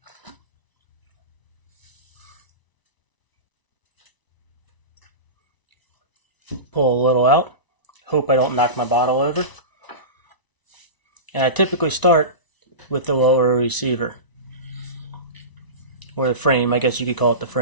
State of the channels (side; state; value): right; late; 1.0 ms